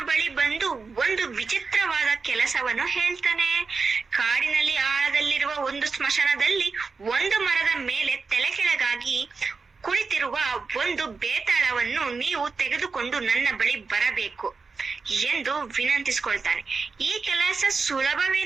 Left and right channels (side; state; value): left; quieter; 4.6 dB